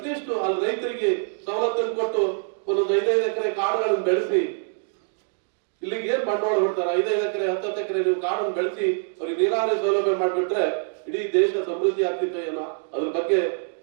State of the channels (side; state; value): left; silent; digital silence